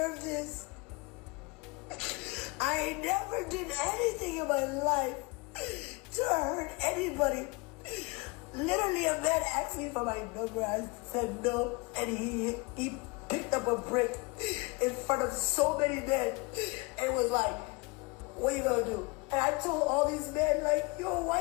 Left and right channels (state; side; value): quieter; right; 25.9 dB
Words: this? I never did anything in my life to hurt anybody. Literally, a man asked me for my number. I said no, and he picked up a brick in front of so many men and was like, "What you gonna do?" And I told all these men, like, "Yo,